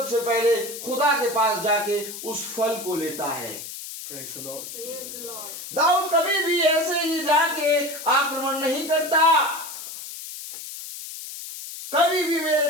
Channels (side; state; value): left; noise; hiss, 10 dB below the sound